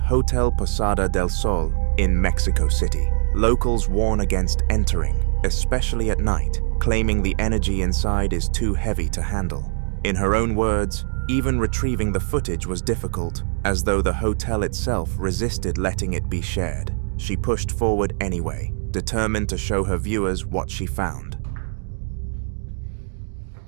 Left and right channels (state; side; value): silent; left; digital silence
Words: Posada del Sol in Mexico City. Locals warn against entering, especially at night, claiming the energy inside is too heavy to handle. In her own words, even retrieving the footage was difficult, as though the hotel itself resisted letting it be shared. She pushed forward anyway, determined to show her viewers what she found.